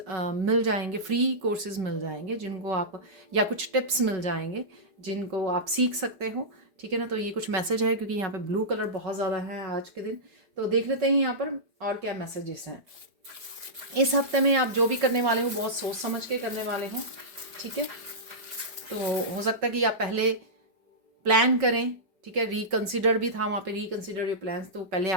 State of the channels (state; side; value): late; left; 5.3 ms